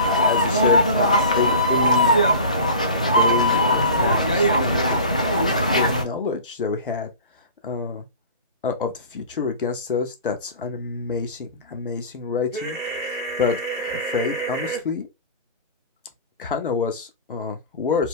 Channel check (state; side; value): inverted; both; correlation -0.38